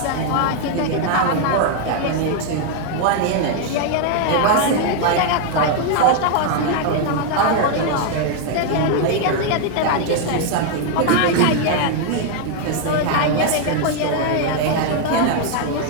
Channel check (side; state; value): both; different; correlation 0.00